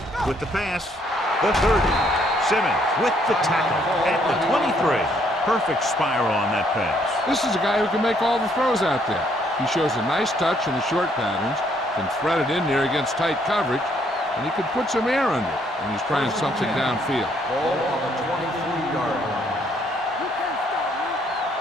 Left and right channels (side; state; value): both; normal; correlation 0.68